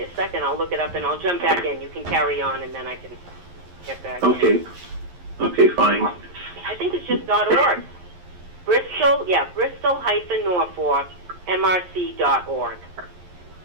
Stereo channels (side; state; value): left; late; 11 ms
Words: a second, I'll look it up and I'll jump back in. You can carry on and then I can get back in. Okay, fine. I think it's just .org. Bristol-Norfolk MRC.org.